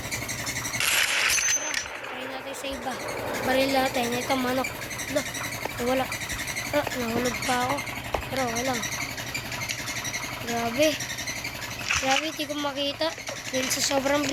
Iba. Baril natin. Ito manok. Wala. Nahulog pa ako. Pero wala lang. Grabe. Grabe, hindi ko makita. Dahil sa sobrang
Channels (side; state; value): both; identical; correlation 1.00